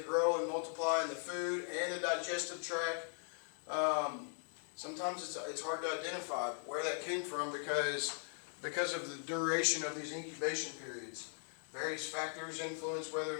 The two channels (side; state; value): right; silent; 51 dB below the other